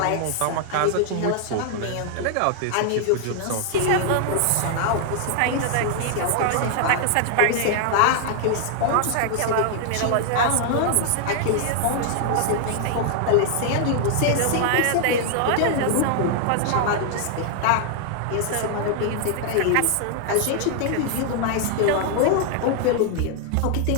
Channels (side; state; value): both; different; correlation 0.00